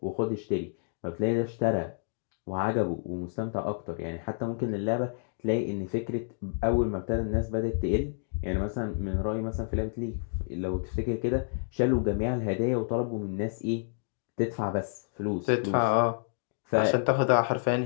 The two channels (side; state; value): right; silent; digital silence